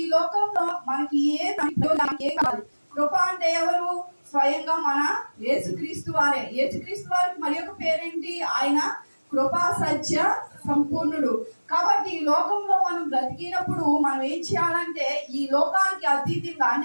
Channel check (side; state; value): both; inverted; correlation -1.00